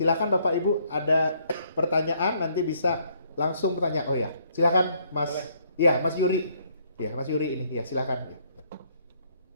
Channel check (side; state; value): both; inverted; correlation -0.67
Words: Bapak Ibu ada pertanyaan nanti bisa langsung bertanya. Oh ya, silakan Mas. Iya, Mas Yuri. Iya, Mas Yuri ini. Ya, silakan. Ya.